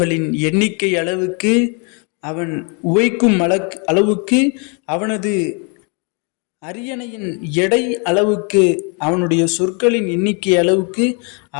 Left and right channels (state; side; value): quieter; right; 35.3 dB